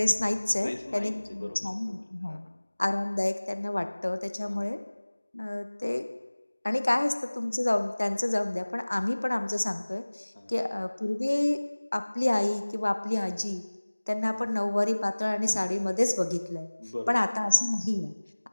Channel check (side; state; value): both; inverted; correlation -1.00